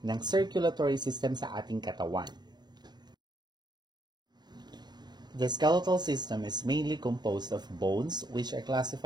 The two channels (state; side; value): late; left; 0.20 ms